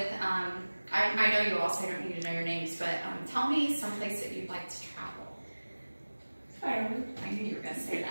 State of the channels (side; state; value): both; inverted; correlation -1.00